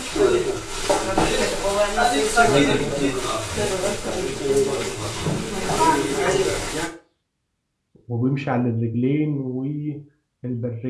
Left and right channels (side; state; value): both; identical; correlation 1.00